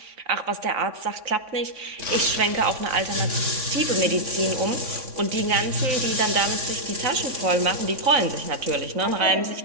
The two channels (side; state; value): left; late; 3.6 ms